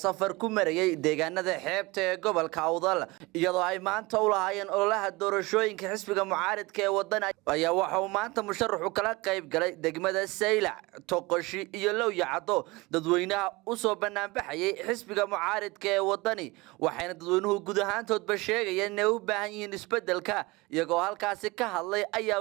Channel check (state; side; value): quieter; left; 23.4 dB